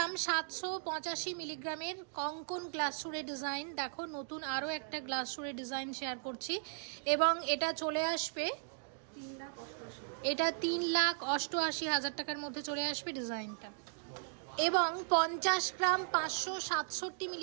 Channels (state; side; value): silent; left; digital silence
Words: 785 মিলিগ্রামের কঙ্কন গ্লাস সুরের ডিজাইন, দেখো নতুন আরও একটা গ্লাস সুরের ডিজাইন শেয়ার করছি এবং এটা চলে আসবে, এটা 3,88,000 টাকার মধ্যে চলে আসবে ডিজাইনটা। এবং 50 গ্রাম 567